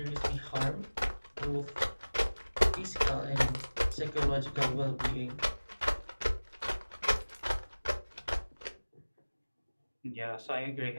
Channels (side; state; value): both; inverted; correlation -1.00